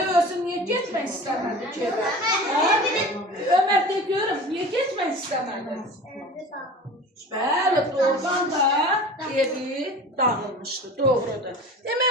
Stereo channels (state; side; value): normal; both; correlation 0.37